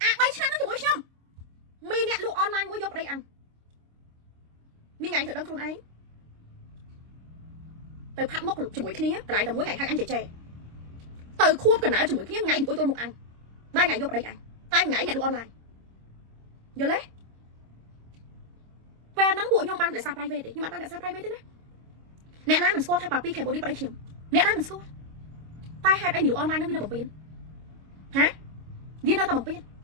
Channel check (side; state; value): left; late; 26 ms